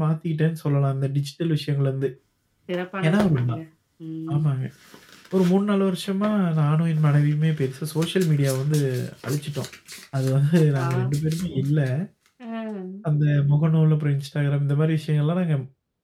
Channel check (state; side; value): identical; both; correlation 1.00